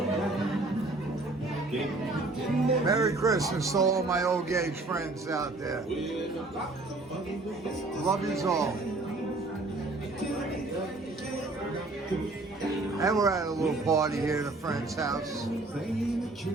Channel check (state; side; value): quieter; left; 3.1 dB